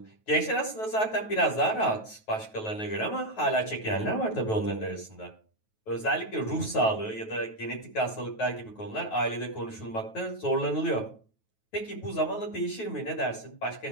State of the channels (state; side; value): late; right; 9.3 ms